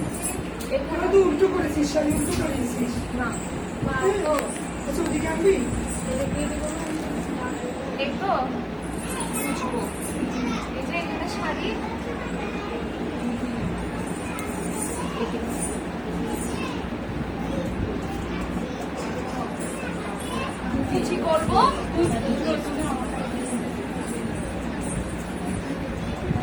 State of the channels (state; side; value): identical; both; correlation 1.00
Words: এখানে তো উল্টো করেছিস, শাড়ি উল্টো করেছিস না তো ওদিকে আনবি একটু বুঝবো এই যে এখানে শাড়ি কিছু করবো